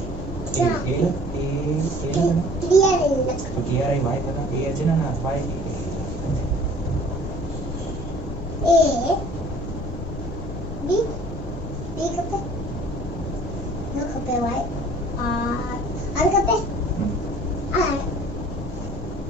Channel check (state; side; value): noise; left; rumble, 7 dB below the sound